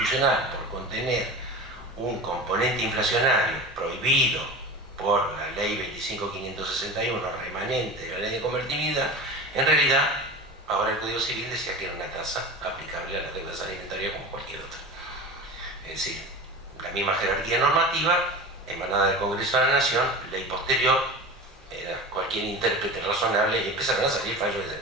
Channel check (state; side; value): normal; both; correlation 0.31